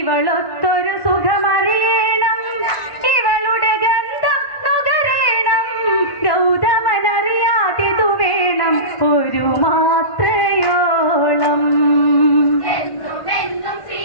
സുഖമറിയണം ഇവളുടെ ഗന്ധം നുകരേണം ഗൗതമനറിയാതിതു വേണം ഒരു മാത്രയോളം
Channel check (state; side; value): late; right; 1.1 ms